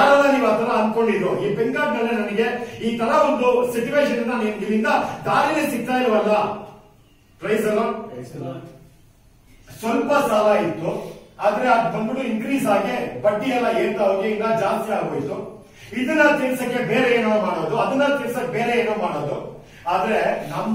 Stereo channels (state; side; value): identical; both; correlation 1.00